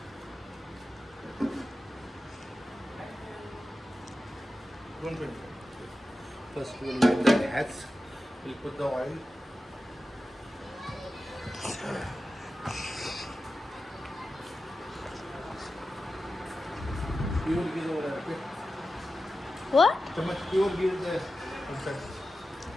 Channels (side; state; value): both; normal; correlation 0.93